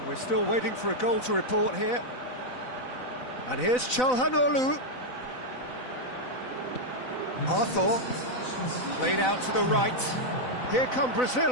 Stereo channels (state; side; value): late; right; 4.0 ms